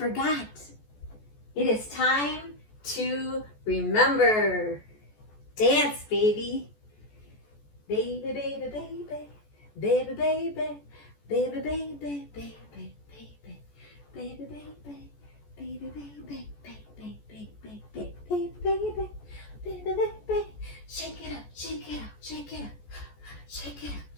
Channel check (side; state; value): right; late; 14 ms